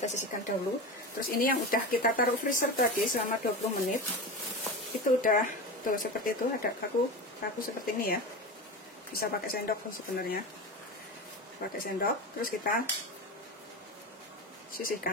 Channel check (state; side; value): normal; both; correlation 0.25